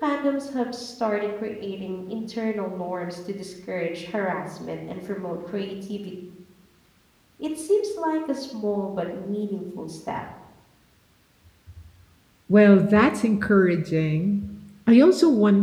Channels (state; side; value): identical; both; correlation 1.00